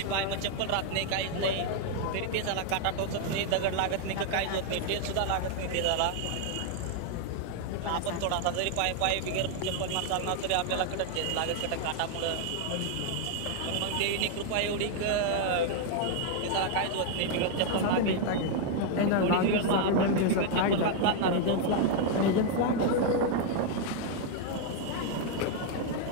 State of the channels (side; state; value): both; different; correlation 0.00